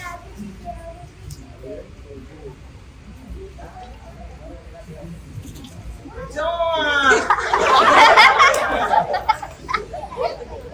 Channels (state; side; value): identical; both; correlation 1.00